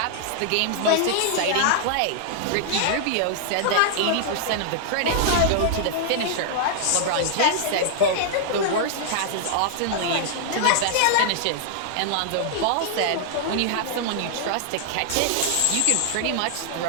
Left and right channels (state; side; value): different; both; correlation -0.01